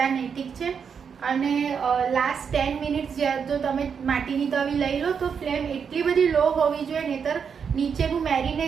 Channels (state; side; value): quieter; left; 6.7 dB